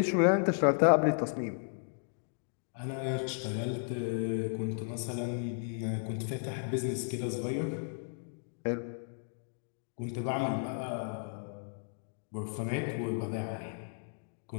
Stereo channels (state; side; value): silent; right; digital silence